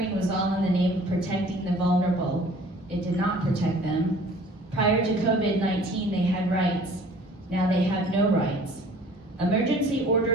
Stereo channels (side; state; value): both; normal; correlation 0.51